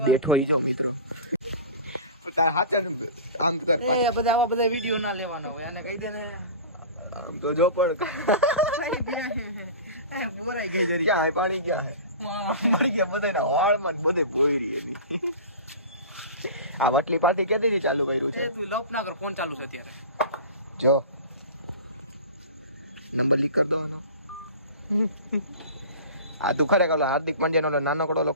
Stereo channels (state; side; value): inverted; both; correlation -0.35